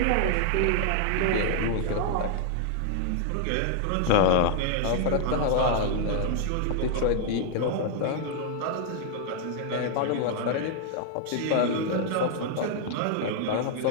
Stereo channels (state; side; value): different; both; correlation 0.00